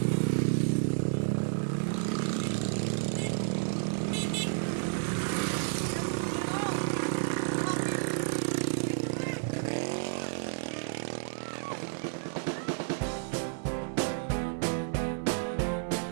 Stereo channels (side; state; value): left; silent; 57 dB below the other